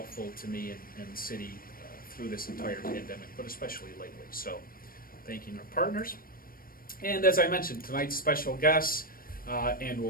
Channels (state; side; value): late; right; 0.42 ms